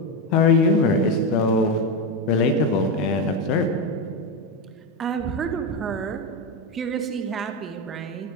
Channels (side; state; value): both; normal; correlation 0.12